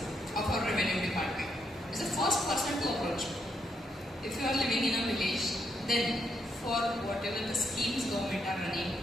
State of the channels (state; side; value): normal; both; correlation 0.77